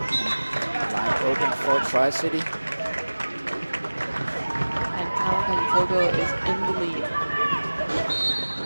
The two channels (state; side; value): inverted; both; correlation -1.00